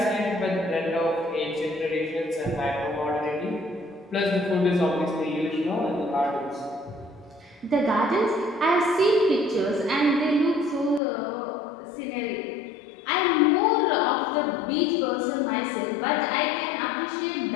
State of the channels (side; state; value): right; drops out; at 11.0 s